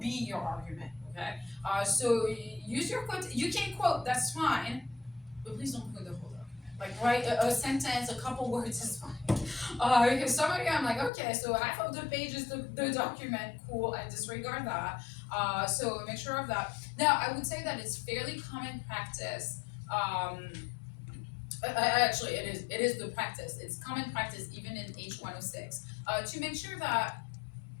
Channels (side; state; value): right; drops out; at 11.1 s